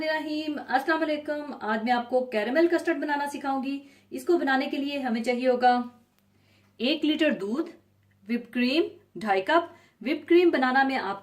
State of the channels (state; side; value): identical; both; correlation 1.00